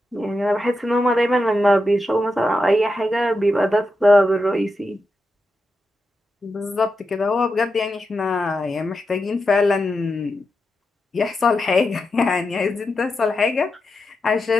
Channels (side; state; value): both; normal; correlation 0.88